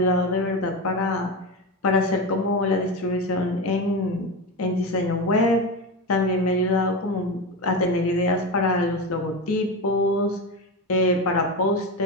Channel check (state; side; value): normal; both; correlation 0.19